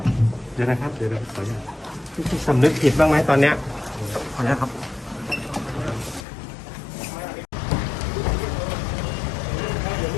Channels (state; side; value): drops out; right; at 6.2 s